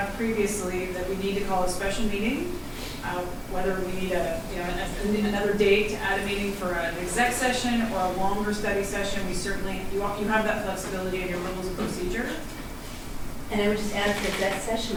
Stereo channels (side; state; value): both; identical; correlation 1.00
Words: previously, that we need to call a special meeting, whether we need another date to add a meeting for an exec session or a longer study session, we certainly, you have that flexibility in your rules of procedure. And I would just add for exec